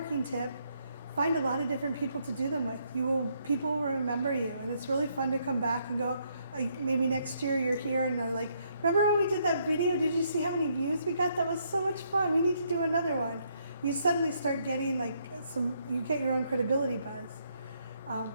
tip, find a lot of different people to do them with. People will remember you. And it's really fun to come back and go, maybe next year you're here and they're like, remember when we did that video? Did you see how many views we got? That was so much fun. We need to do another one. You suddenly start getting you get your own credibility buzz.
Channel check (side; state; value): both; inverted; correlation -0.73